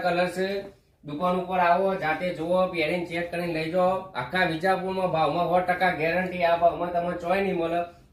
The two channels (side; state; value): both; identical; correlation 1.00